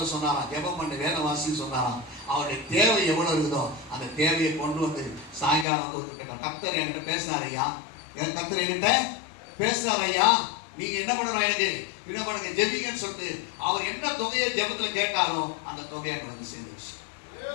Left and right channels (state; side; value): drops out; right; at 5.7 s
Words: சொன்னாராம், ஜெபம் பண்ண வேத வாசின்னு சொன்னாராம். அவருடைய தேவை எவ்வளவு இருக்குதோ அந்த தேவையை கொண்டு வந்து சாயங்காலம் வந்து ஒத்துக்கிட்டோம். கர்த்தர் என்கிட்ட பேசுறாரு ஐயா, கர்த்தர் என்கிட்ட பேசுறாரு ஐயா, நீங்க என்ன பண்ணணும், எனக்கு என்ன பண்ணுங்க, ஜெபிங்கன்னு சொல்லிட்டு அவர் என்ன தொகையை ஜெபத்துல கேட்டாரோ அந்த தொகையை அங்க வந்து சேர்ந்துச்சு.